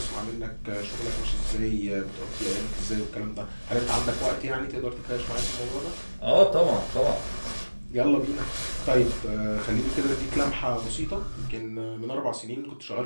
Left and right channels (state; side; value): inverted; both; correlation -1.00